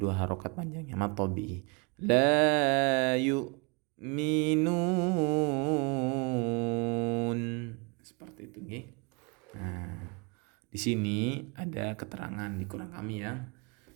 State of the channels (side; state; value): left; quieter; 31.9 dB